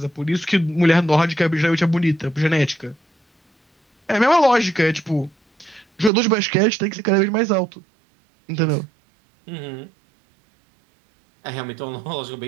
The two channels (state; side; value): drops out; left; at 6.1 s